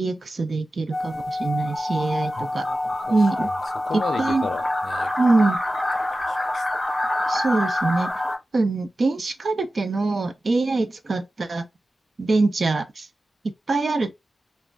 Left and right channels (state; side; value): normal; both; correlation 0.94